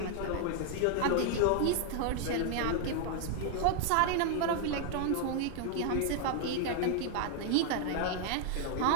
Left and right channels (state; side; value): different; both; correlation 0.00